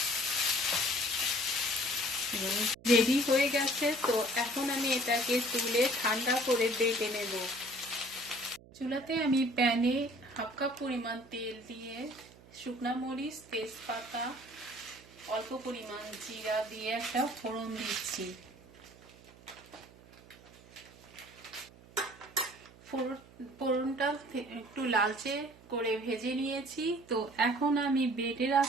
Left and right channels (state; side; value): noise; right; hum, 23 dB below the sound